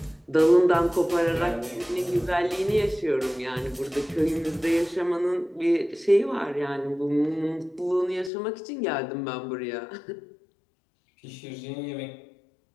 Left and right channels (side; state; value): right; drops out; at 8.3 s